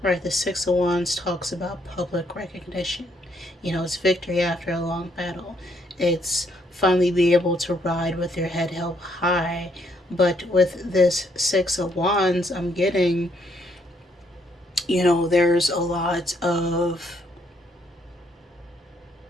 Right, the Six of Wands talks about public recognition. You know, it's victory after a long battle. It's finally be able to ride with your head held high. But with this Six of Wands, I'm getting, there's a lot of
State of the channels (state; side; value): normal; both; correlation 0.71